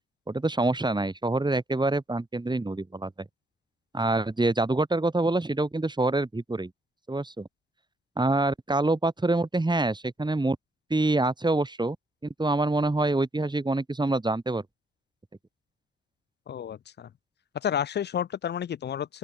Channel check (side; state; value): both; normal; correlation 0.69